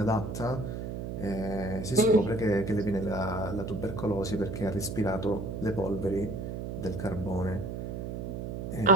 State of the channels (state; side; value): noise; right; hum, 5 dB below the sound